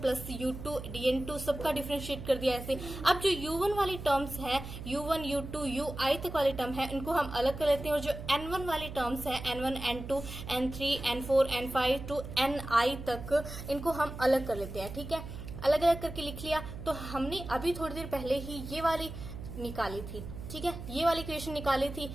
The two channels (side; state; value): right; noise; hum, 10 dB below the sound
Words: plus U2 DN2 सबका डिफरेंशिएट कर दिया ऐसे। अब जो U1 वाली टर्म्स है U1 U2 UI तक वाली टर्म है इनको हम अलग कर लेते हैं, और जो N1 वाली टर्म्स है N1 N2 N3 N4 N5 to Ni तक इनको हम अलग कर लेते हैं। ठीक है, अलग अलग करके लिख लिया। तो हमने अभी थोड़ी देर पहले ही ये वाली निकाली थी। ठीक है, ये वाली इक्वेशन निकाली थी।